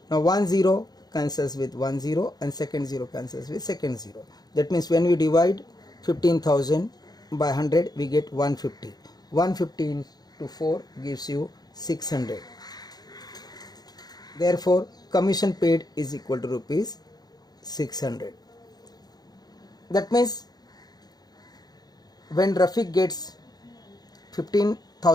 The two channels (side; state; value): right; late; 0.19 ms